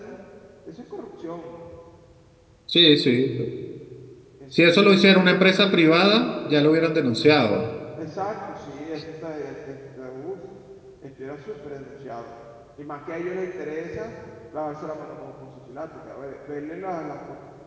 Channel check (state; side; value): identical; both; correlation 1.00